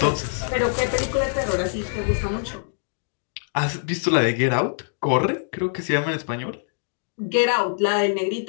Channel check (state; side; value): silent; right; digital silence